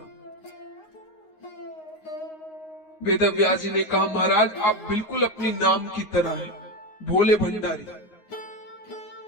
वेदव्यास जी ने कहा, महाराज आप बिल्कुल अपनी नाम की तरह है, भोले भंडारी।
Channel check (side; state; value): right; late; 9.5 ms